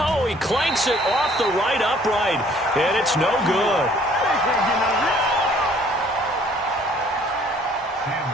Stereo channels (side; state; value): both; normal; correlation 0.58